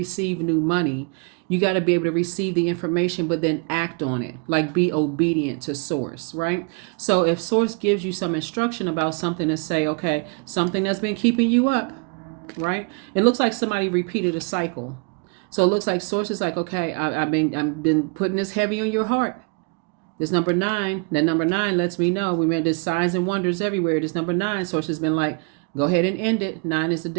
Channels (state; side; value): quieter; left; 33.7 dB